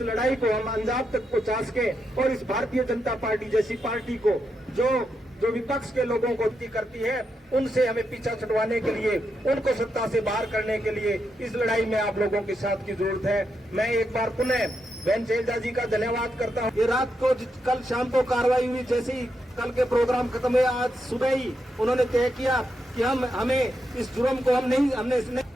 लड़ाई को हम अंजाम तक पहुंचा सके और इस भारतीय जनता पार्टी जैसी पार्टी को जो विपक्ष के लोगों को करती है उनसे हमें पीछा छुड़वाने के लिए, उनको सत्ता से बाहर करने के लिए इस लड़ाई में आप लोगों के साथ की जरूरत है। मैं एक बार पुनः बहन शैलजा जी का धन्यवाद करता हूँ। ये रात को कल शाम को कार्रवाई हुई, जैसे ही कल के प्रोग्राम खत्म हुए आज सुबह ही उन्होंने तय किया कि हमें इस जुर्म को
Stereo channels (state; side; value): normal; both; correlation 0.83